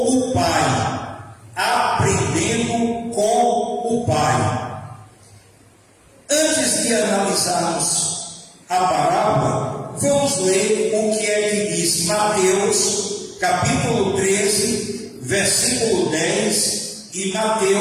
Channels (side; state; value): both; identical; correlation 1.00